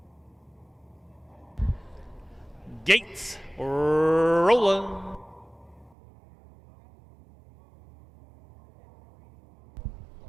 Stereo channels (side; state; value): left; drops out; at 6.0 s